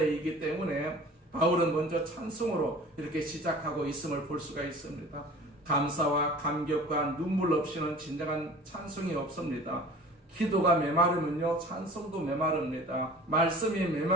때문에 바울은 먼저 찬송으로 이렇게 시작하고 있음을 볼 수가 있습니다. 감사와 감격과 눈물 없이는 진정한 찬송이 없습니다. 기도가 메마르면요, 찬송도 메마릅니다. 말씀이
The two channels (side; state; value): both; normal; correlation 0.43